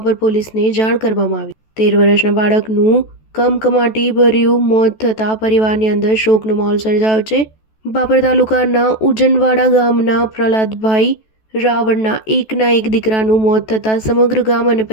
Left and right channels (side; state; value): right; late; 14 ms